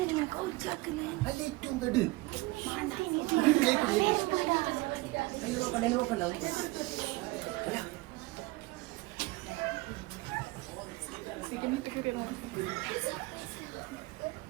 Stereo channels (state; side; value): quieter; left; 21.7 dB